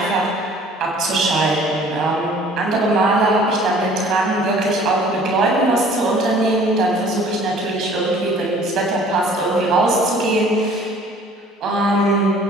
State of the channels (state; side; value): normal; both; correlation 0.52